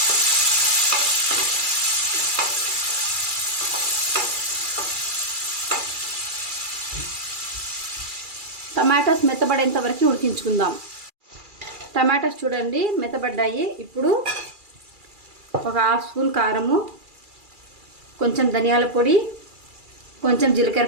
టమాటాస్ మెత్తబడేంత వరకు ఉడికించుకుందాం. టమాటాస్ చూడండి మెత్తబడ్డాయి. ఇప్పుడు ఒక హాఫ్ స్పూన్ కారము, కొంచెం ధనియాల పొడి, కొంచెం జీలకర్ర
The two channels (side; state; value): left; late; 2.4 ms